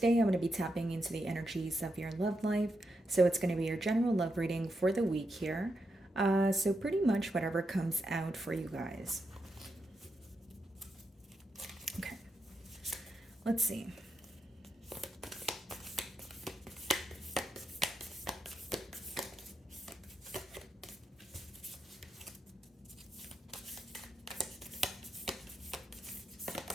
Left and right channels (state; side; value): normal; both; correlation 0.84